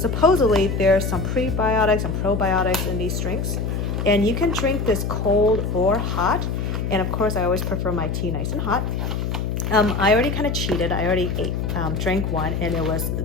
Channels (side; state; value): left; noise; hum, 1 dB below the sound